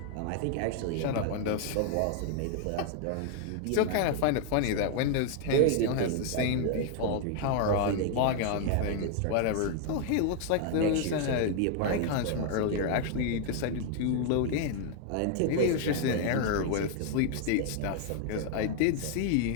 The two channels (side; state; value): both; different; correlation 0.00